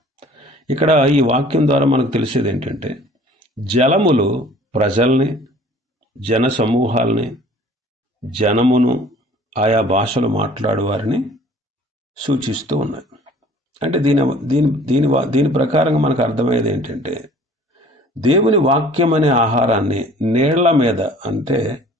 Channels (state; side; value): normal; both; correlation 0.51